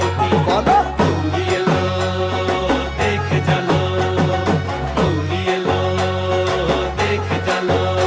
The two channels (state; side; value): identical; both; correlation 1.00